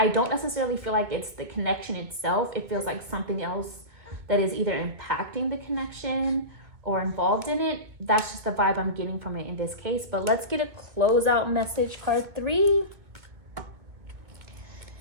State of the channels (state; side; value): late; left; 1.9 ms